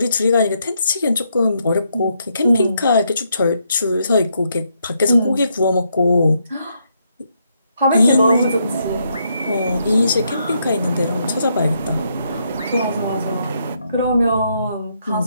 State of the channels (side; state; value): both; inverted; correlation -0.76